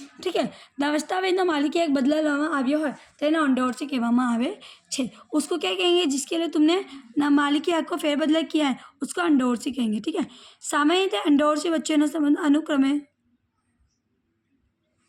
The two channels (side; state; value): both; identical; correlation 1.00